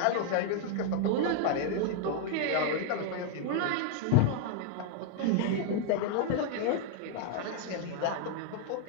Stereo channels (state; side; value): different; both; correlation 0.00